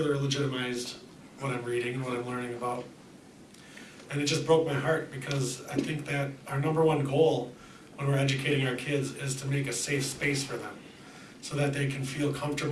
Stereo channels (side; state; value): both; identical; correlation 1.00